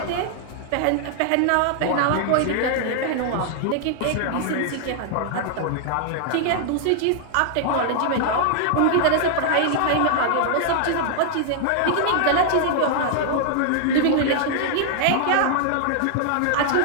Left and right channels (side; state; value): both; different; correlation -0.01